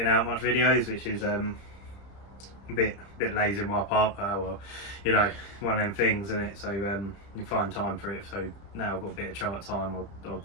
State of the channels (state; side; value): late; right; 30 ms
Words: out much videos, which is a bit lazy on my part. Well, you know, one of them things, isn't it? So you find time for it. So now I've got a bit of chart time, I'll